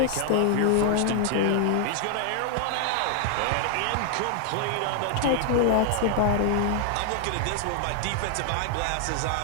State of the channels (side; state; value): both; different; correlation 0.00